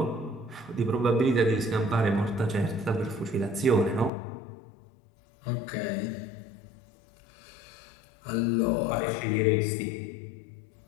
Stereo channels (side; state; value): right; drops out; at 4.1 s